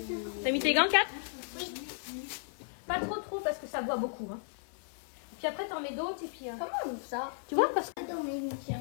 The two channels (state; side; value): silent; right; 55 dB below the other